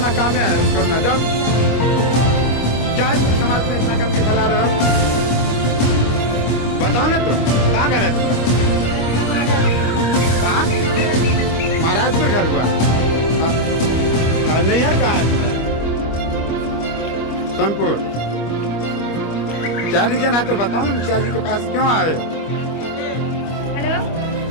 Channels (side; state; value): right; late; 25 ms